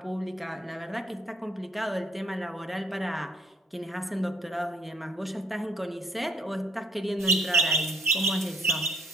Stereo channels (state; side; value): normal; both; correlation 0.61